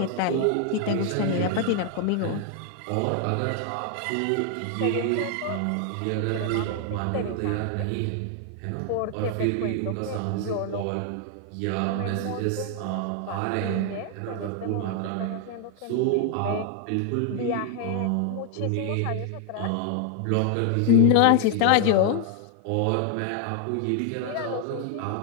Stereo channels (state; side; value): different; both; correlation 0.00